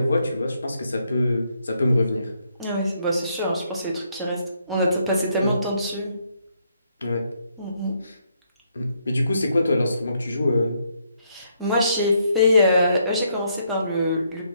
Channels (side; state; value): both; inverted; correlation -0.73